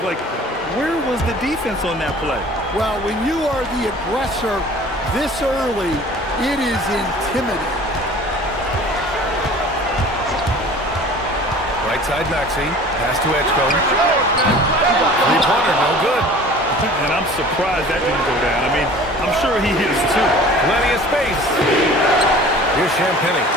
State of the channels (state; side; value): normal; both; correlation 0.45